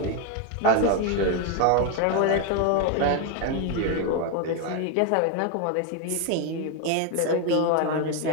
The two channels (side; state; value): both; different; correlation 0.01